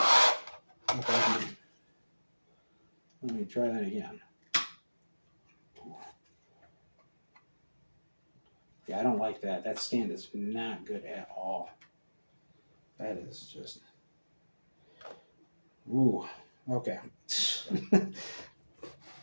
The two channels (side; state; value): both; inverted; correlation -1.00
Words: Okay. Let me try that again. Yeah, I don't like that. That stand is not good at all. That is just... Ooh, okay.